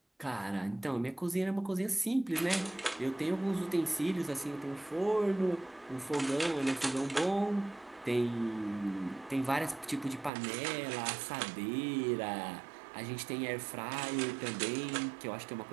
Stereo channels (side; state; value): left; drops out; at 10.3 s